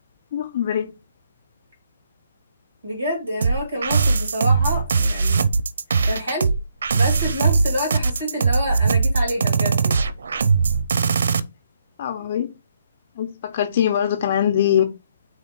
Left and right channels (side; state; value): both; inverted; correlation -0.75